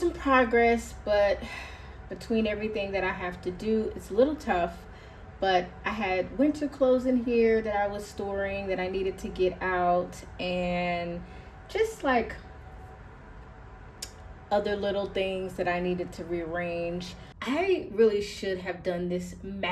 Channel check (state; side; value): identical; both; correlation 1.00